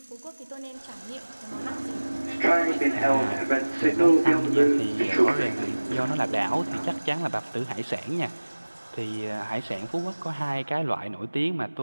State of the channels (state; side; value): inverted; both; correlation -1.00